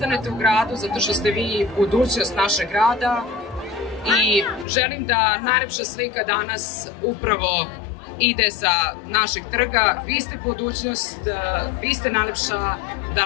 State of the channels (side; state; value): right; drops out; at 4.7 s